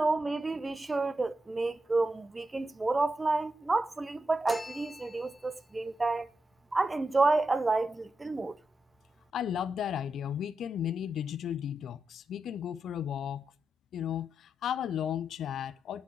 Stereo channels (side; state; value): both; normal; correlation 0.86